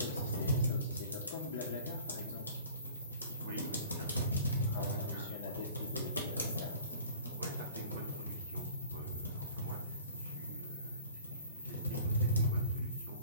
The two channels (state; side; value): inverted; both; correlation -0.46